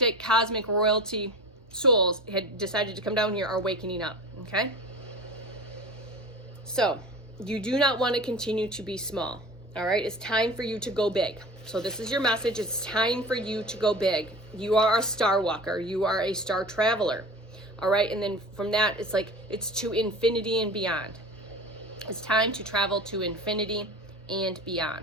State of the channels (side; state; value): both; normal; correlation 0.35